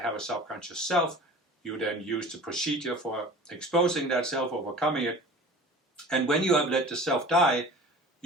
a subconscious self. You then use the procedure for exposing that self, overcoming it. And when you have let the self die,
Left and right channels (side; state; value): both; normal; correlation 0.40